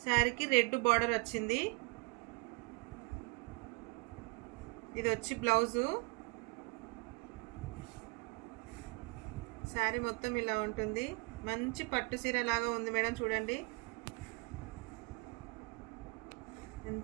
శారీకి రెడ్ బార్డర్ వచ్చింది. ఇది వచ్చి బ్లౌజు. శారీ మొత్తం ఇలా ఉంటుంది. మంచి పట్టు చీర లాగా ఉంది మేడం, చూడండి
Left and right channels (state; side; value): quieter; left; 29.9 dB